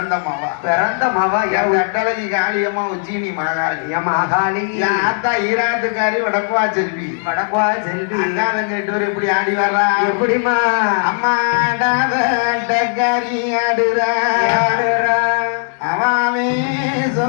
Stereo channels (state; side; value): silent; right; 65 dB below the other